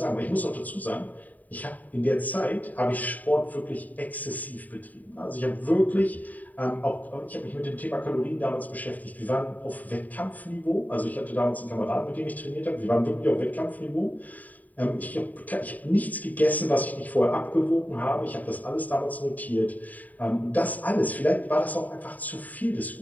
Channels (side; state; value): right; late; 0.076 ms